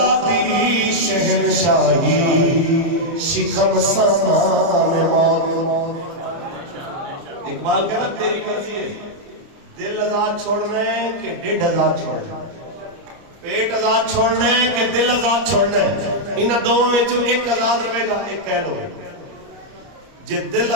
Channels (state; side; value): late; left; 29 ms